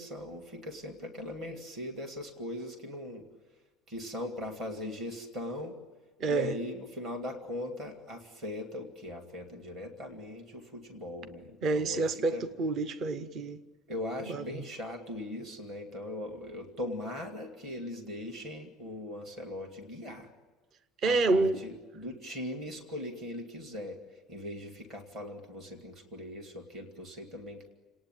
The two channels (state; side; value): normal; both; correlation 0.51